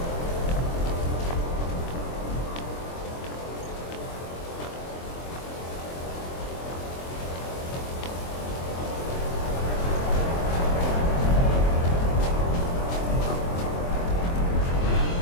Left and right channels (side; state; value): right; late; 23 ms